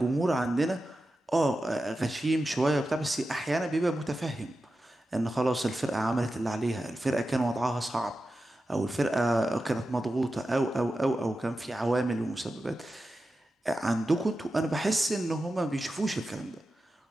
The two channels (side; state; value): both; normal; correlation 0.92